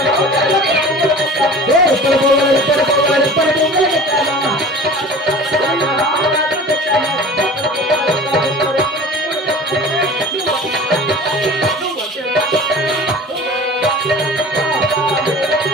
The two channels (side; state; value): both; normal; correlation 0.40